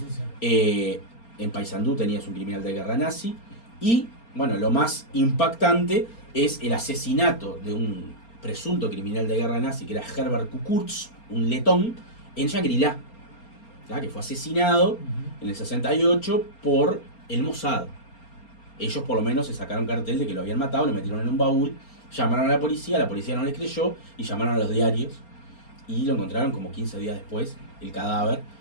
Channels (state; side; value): late; right; 4.3 ms